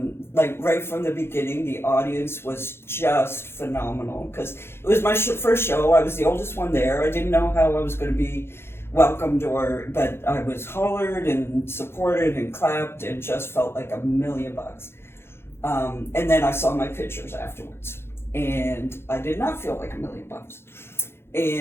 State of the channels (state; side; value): late; right; 0.12 ms